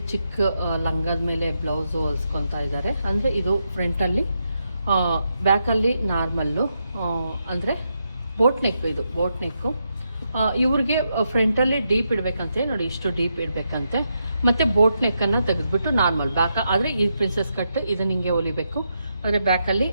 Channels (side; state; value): both; inverted; correlation -0.82